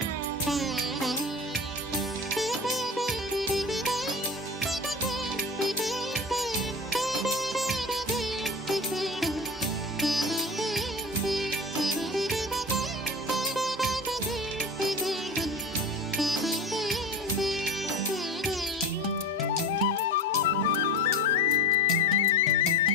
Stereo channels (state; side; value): normal; both; correlation 0.31